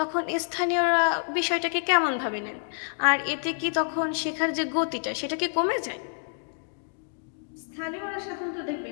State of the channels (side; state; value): right; silent; 60 dB below the other